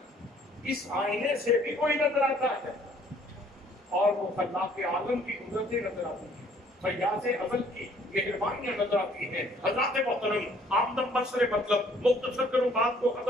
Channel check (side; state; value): both; normal; correlation 0.60